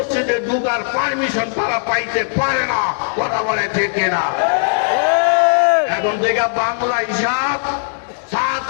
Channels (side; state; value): right; silent; digital silence